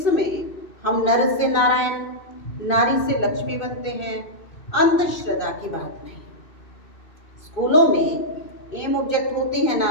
हम नर से नारायण, नारी से लक्ष्मी बनते हैं। अंधश्रद्धा की बात नहीं। स्कूलों में एम ऑब्जेक्ट होती है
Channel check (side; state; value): right; late; 2.6 ms